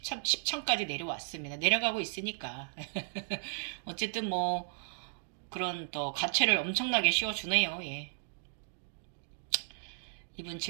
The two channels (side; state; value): left; silent; digital silence